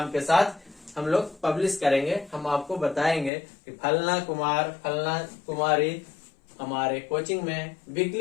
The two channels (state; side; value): drops out; right; at 3.3 s